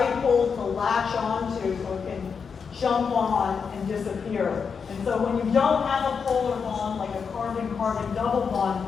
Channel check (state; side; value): quieter; right; 6.0 dB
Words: to latch onto so it can jump on and disappear. And so when you don't have a polar bond, like a carbon-carbon double bond,